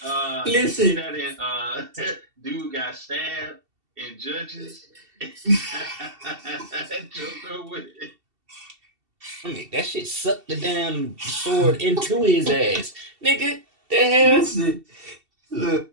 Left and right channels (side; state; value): left; late; 2.7 ms